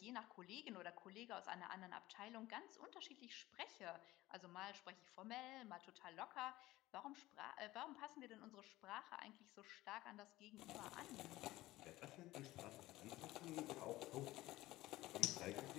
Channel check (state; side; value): quieter; right; 17.5 dB